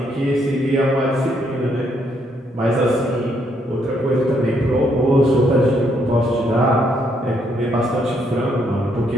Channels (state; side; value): normal; both; correlation 0.73